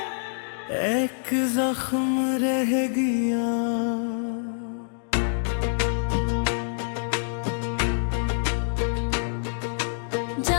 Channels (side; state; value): right; silent; digital silence